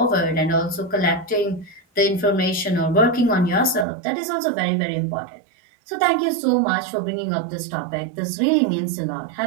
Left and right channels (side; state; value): left; drops out; at 3.9 s